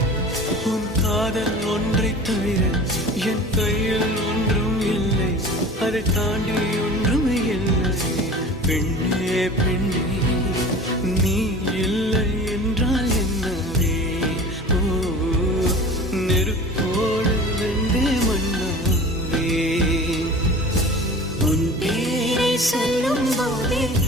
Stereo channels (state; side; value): normal; both; correlation 0.39